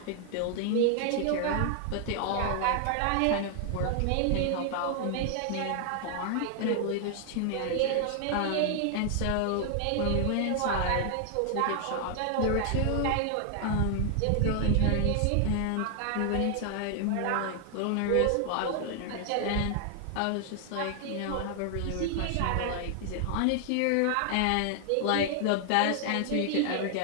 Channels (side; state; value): both; different; correlation 0.00